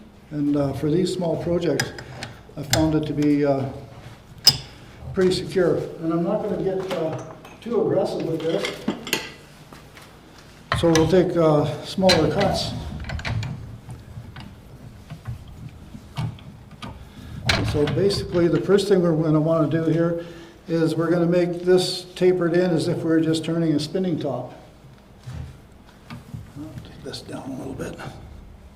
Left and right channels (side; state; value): both; identical; correlation 1.00